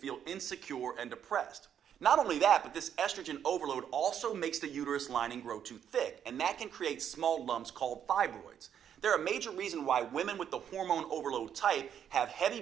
insecure and depressed. Not only that, but this estrogen overload also makes the uterus lining grow too thick, and that can create small lumps called fibroids. They're a major reason why women with the hormone overload type have heavy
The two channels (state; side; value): quieter; left; 9.0 dB